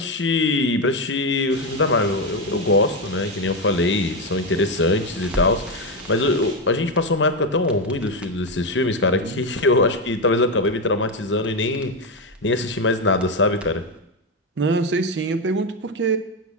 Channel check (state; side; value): normal; both; correlation 0.10